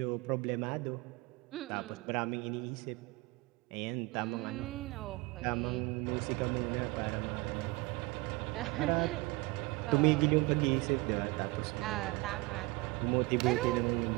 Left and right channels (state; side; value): quieter; left; 23.4 dB